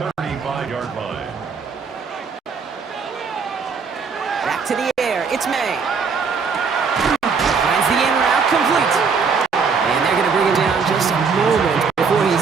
35-yard line. Back to the air. It's May. Finds the in route complete. And they're going to bring him down just a moment before he's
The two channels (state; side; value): quieter; left; 5.4 dB